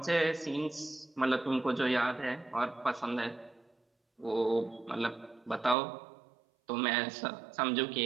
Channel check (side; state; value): left; drops out; at 5.8 s